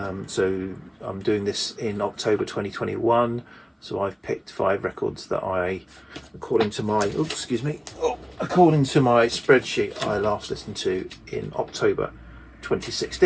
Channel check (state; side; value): identical; both; correlation 1.00